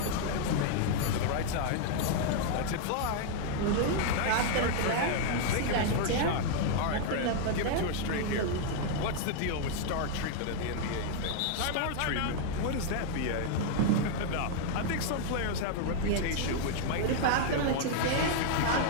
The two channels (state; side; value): different; both; correlation 0.00